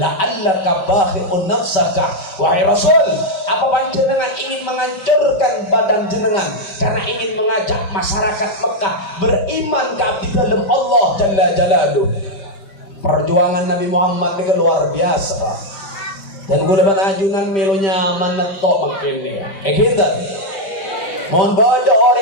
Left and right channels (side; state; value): right; late; 5.2 ms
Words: la'allaka bakhi'un nafsaka. Wahai Rasul, apa panjenengan ingin menghancurkan badan jenengan karena ingin mengajak masyarakat Mekah beriman ke abdi dalam Allah Jalla Jalaluh. Perjuangan Nabi Muhammad ini luar biasa pak. Dan gue dapat ajunan melunya menetok makin ini. Gitu. Mohon bodoh